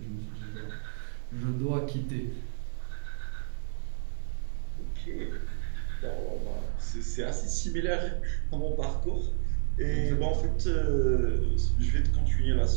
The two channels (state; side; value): silent; left; digital silence